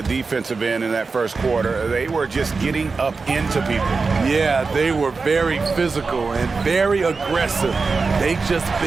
defensive end in that first quarter. They were just getting up into people. Yeah, they were very physical and very aggressive. They've just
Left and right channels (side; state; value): left; quieter; 4.4 dB